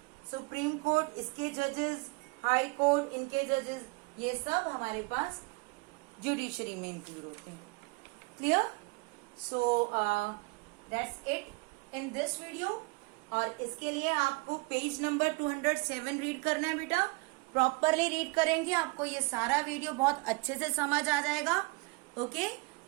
सुप्रीम कोर्ट, इसके जजेस, हाई कोर्ट, इनके जजेस, ये सब हमारे पास जुडिशरी में इंक्लूड होते हैं. Clear? So that's it in this video. और इसके लिए आपको पेज नंबर 207 रीड करना है बेटा. प्रॉपरली रीड करेंगे आपको ये सारा वीडियो बहुत अच्छे से समझ आ जाएगा. Okay,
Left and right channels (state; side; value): quieter; left; 28.2 dB